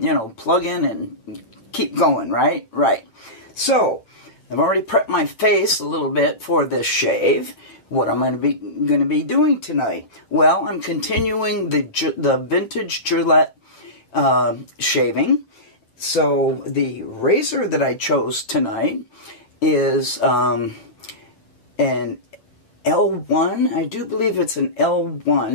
and keep going, right? Right. So, I've already prepped my face a little bit for this shave. What I'm going to be doing tonight? Well, I'm continuing the vintage Gillette shaving. So, the razor that I chose tonight is an L1. I do believe it's an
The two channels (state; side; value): late; right; 8.5 ms